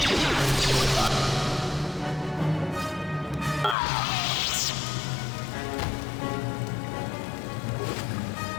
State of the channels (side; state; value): right; drops out; at 3.8 s